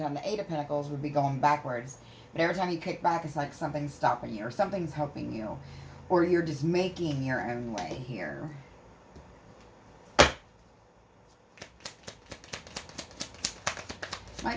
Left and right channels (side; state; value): both; identical; correlation 1.00